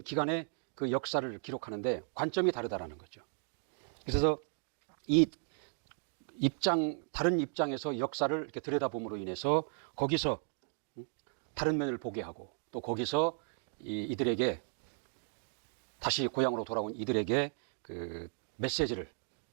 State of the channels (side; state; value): left; silent; 54 dB below the other